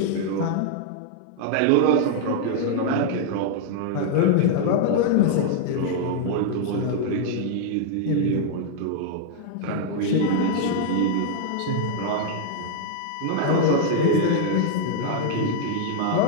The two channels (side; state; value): both; different; correlation 0.00